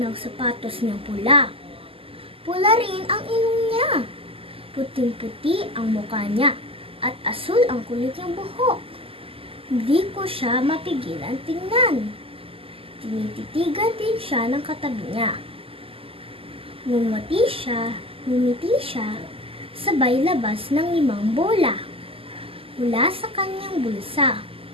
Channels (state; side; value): late; left; 0.27 ms